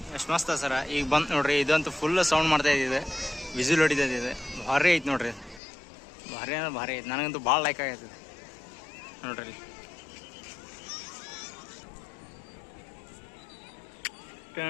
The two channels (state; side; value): drops out; right; at 5.6 s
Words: ಎಷ್ಟು ಮಸ್ತ್ ಸರ. ಈಗ ಬಂತು ನೋಡ್ರಿ, ಇದಂತೂ ಫುಲ್ ಸೌಂಡ್ ಮಾಡ್ತಾ ಇದ್ದಿದೆ, ವಿಸಿಲ್ ಹೊಡಿತೈತಿ. ಇದು ಭಾರಿ ಐತೆ ನೋಡ್ರಿ, ಭಾರಿ ಅಂದ್ರೆ ಭಾರಿ ಐತೆ. ನನಗಂತೂ ಭಾಳ ಲೈಕ್ ಆಗೈತದೆ ನೋಡ್ರಿ.